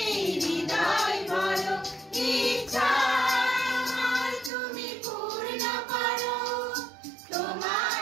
হৃদয় ভরো। ইচ্ছা আমার তুমি পূর্ণ করো, তোমার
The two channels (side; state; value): left; drops out; at 4.5 s